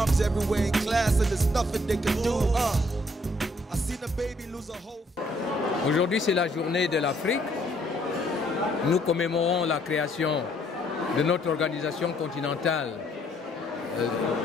everywhere in class, and there's nothing they can do. I seen a baby lose a whole. Aujourd'hui, c'est la journée de l'Afrique. Nous commémorons la création de notre organisation continentale,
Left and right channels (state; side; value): normal; both; correlation 0.67